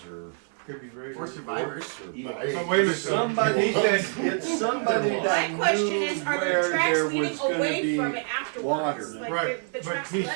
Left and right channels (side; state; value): left; silent; 56 dB below the other